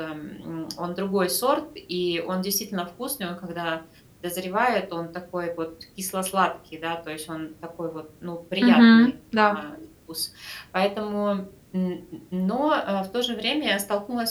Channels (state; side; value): identical; both; correlation 1.00